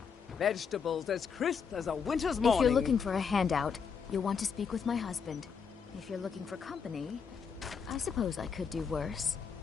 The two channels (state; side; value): quieter; right; 6.3 dB